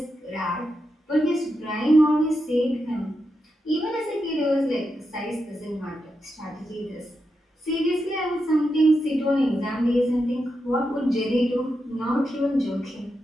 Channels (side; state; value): both; normal; correlation 0.86